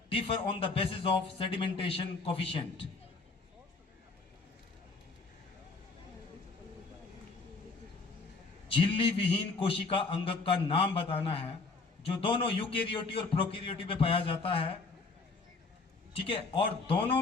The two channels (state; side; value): quieter; right; 4.0 dB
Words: differ on the basis of sedimentation coefficient. झिल्ली विहीन कोशिका अंगक का नाम बताना है जो दोनों यूकैरियोटी और प्रोकैरियोटी में पाया जाता है, ठीक है, और दोनों